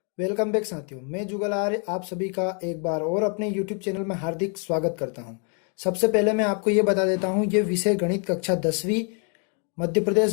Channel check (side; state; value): right; quieter; 39.9 dB